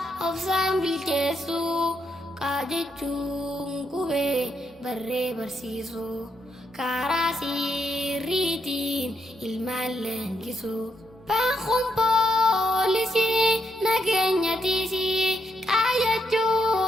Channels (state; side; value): normal; both; correlation 0.79